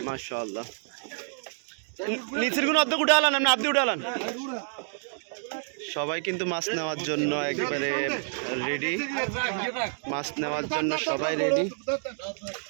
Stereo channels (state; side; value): silent; left; digital silence